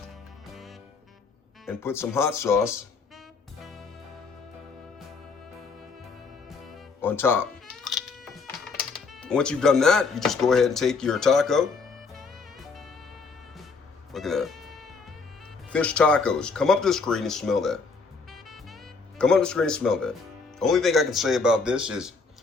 and put some hot sauce on top. Once you've done that, you just go ahead and take your taco. Look at that. Fish tacos. Come up to the screen and smell that. Come up to the screen and smell that. Only thing I can say about this is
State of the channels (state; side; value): quieter; right; 4.6 dB